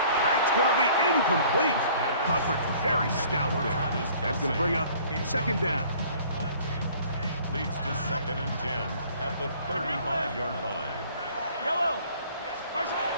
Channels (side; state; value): both; inverted; correlation -0.53